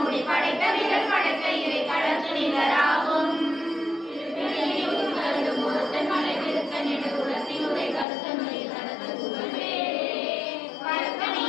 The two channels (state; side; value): drops out; right; at 8.1 s